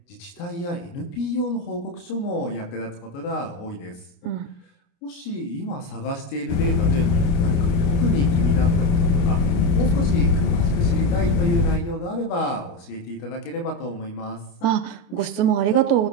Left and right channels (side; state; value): right; late; 29 ms